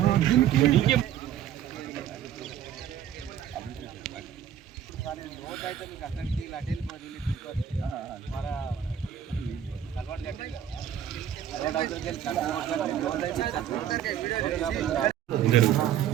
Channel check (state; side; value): quieter; left; 10.1 dB